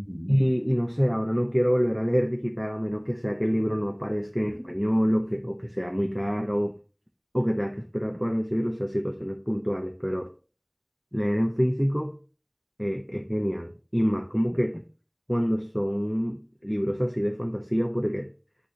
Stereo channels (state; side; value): identical; both; correlation 1.00